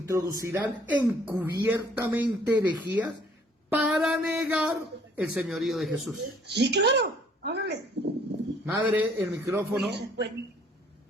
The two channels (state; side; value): normal; both; correlation 0.60